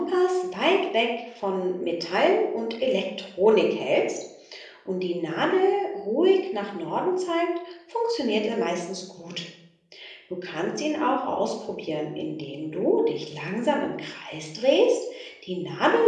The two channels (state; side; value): identical; both; correlation 1.00